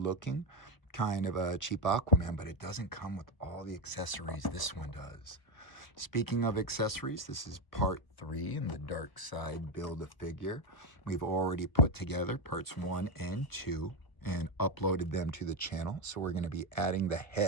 kind of a cheap Aquaman, but it doesn't come with all the accessories this one does. Speaking of accessories, this is part 3 in the Darkseid Build-A-Figure. We've already put together parts 1 and 2 and uploaded them to the channel. So we're going to be adding the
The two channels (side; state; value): right; late; 1.0 ms